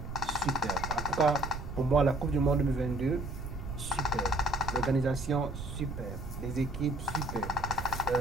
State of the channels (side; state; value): right; noise; rumble, 8 dB below the sound